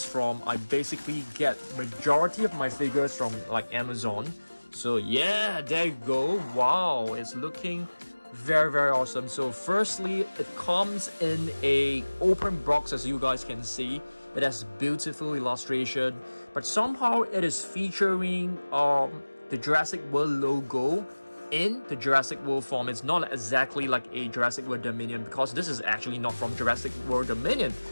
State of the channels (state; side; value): inverted; both; correlation -1.00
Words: from. I basically get majority of my figures from like Amazon. So yeah, there you go. Wow, it's looking very awesome. So firstly, it comes in a open box, as you guys can see. It has beautiful illustration, but somehow it is featuring the Jurassic World logo in the Jurassic World form. It's not exactly like a Jurassic World Dominion, because this is actually not from Jurassic World Dominion.